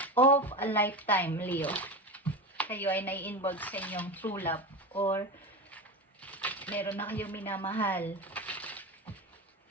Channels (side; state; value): both; normal; correlation 0.24